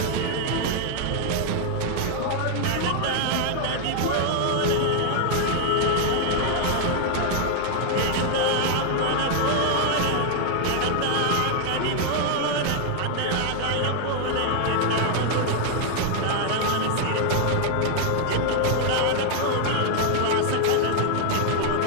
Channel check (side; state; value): both; different; correlation 0.00